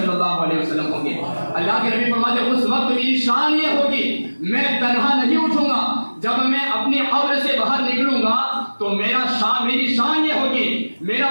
اللہ علیہ وسلم ہوں گے. اللہ کے نبی فرماتے ہیں اس وقت میری شان یہ ہوگی میں تنہا نہیں اٹھوں گا, جب میں اپنی قبر سے باہر نکلوں گا تو میری شان یہ ہوگی, میرا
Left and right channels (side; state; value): both; inverted; correlation -1.00